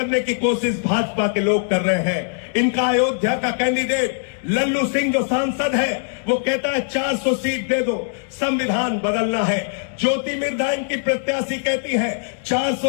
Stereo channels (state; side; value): silent; right; 65 dB below the other